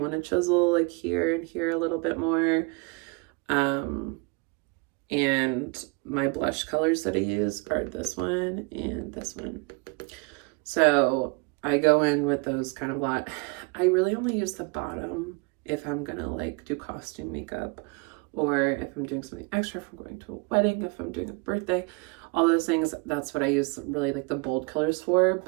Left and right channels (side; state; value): left; quieter; 29.9 dB